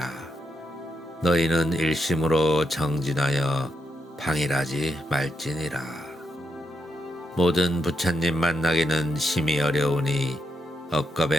너희는 일심으로 정진하여 방일하지 말지니라. 모든 부처님 만나기는 심히 어려우니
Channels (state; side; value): normal; both; correlation 0.82